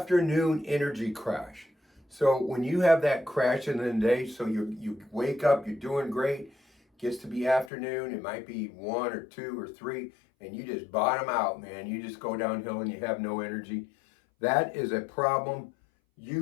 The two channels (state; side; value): drops out; right; at 7.7 s